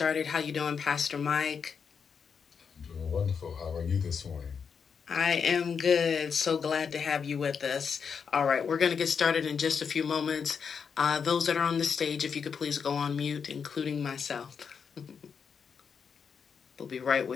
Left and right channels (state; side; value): quieter; right; 6.4 dB